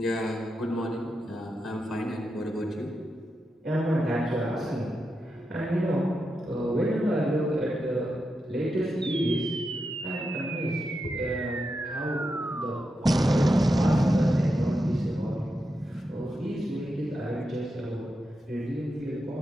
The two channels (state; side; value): normal; both; correlation 0.87